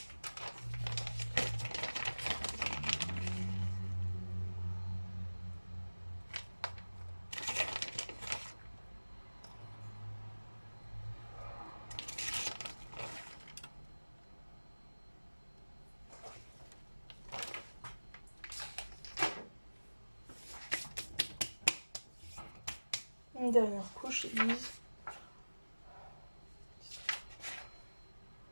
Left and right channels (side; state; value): both; inverted; correlation -1.00